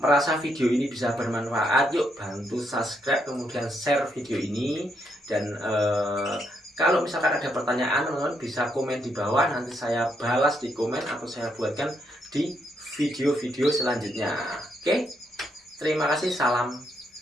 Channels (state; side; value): normal; both; correlation 0.77